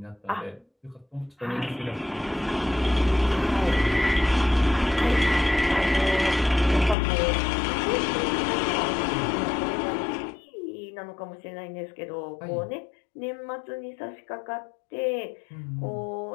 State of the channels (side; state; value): right; drops out; at 7.0 s